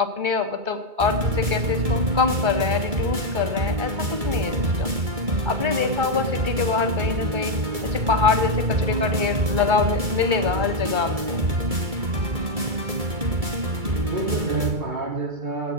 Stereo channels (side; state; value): left; late; 2.3 ms